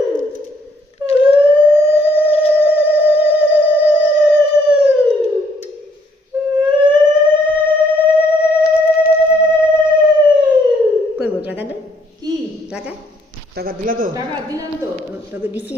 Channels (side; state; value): both; normal; correlation 0.67